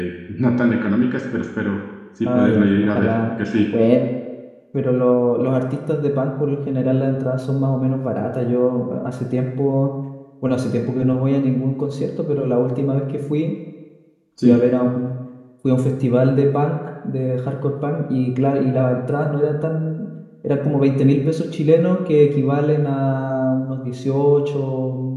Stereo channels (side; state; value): both; identical; correlation 1.00